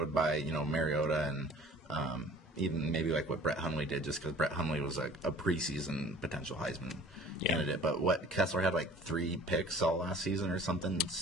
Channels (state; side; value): normal; both; correlation 0.49